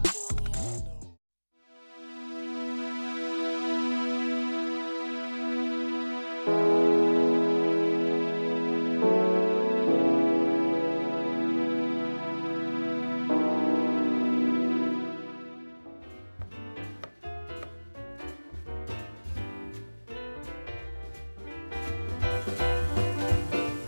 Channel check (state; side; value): inverted; both; correlation -1.00